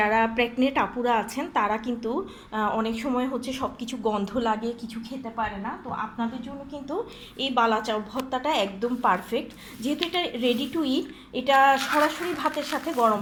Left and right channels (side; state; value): both; identical; correlation 1.00